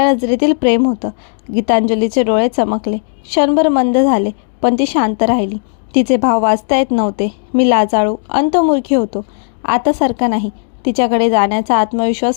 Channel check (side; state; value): right; silent; digital silence